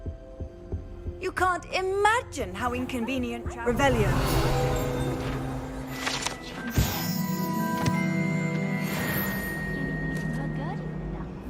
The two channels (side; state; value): both; identical; correlation 1.00